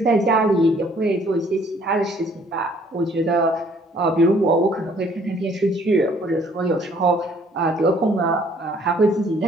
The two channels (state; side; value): normal; both; correlation 0.60